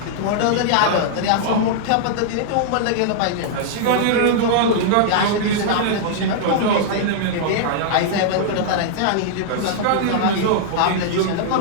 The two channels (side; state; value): both; different; correlation -0.01